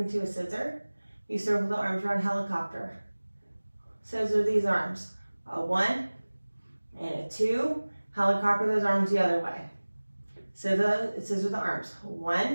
a scissor. You circle the arms around helicopter. Scissor these arms. A 1 and a 2. Helicopter those arms the other way. Scissor the arms.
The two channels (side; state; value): both; inverted; correlation -1.00